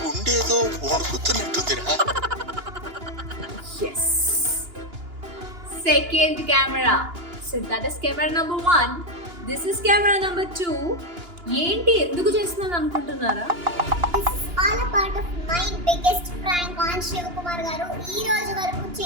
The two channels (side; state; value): left; late; 2.9 ms